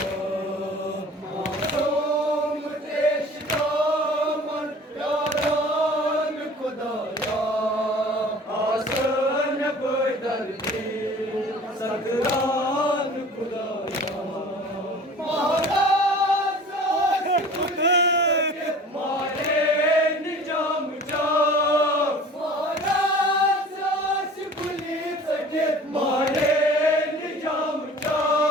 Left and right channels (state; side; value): normal; both; correlation 0.44